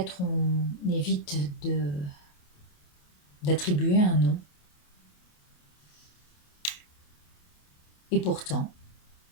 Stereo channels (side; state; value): right; late; 28 ms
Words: on évite d'attribuer un nom. Et pourtant,